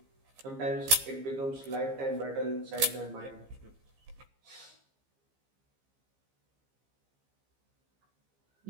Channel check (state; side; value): late; left; 15 ms